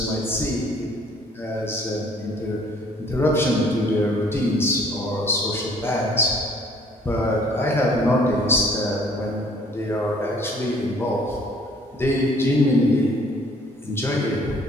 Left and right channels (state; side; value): normal; both; correlation 0.58